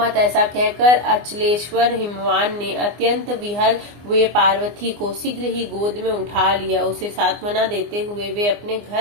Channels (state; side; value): late; left; 24 ms